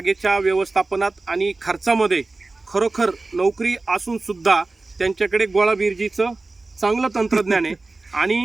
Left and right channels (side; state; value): left; quieter; 3.4 dB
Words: व्यवस्थापनात आणि खर्चामध्ये खरोखर नोकरी असून सुद्धा त्यांच्याकडे गोळा बिरजीचं चांगलं तंत्रज्ञान आहे